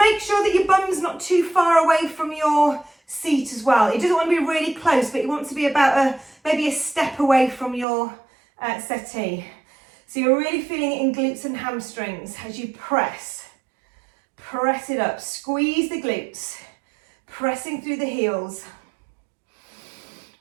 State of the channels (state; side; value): drops out; left; at 7.9 s